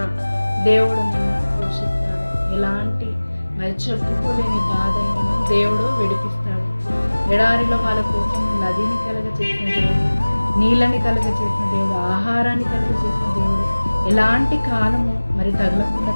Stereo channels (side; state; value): both; inverted; correlation -1.00